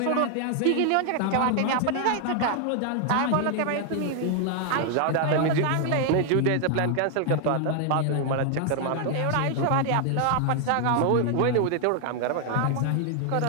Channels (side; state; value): both; different; correlation 0.00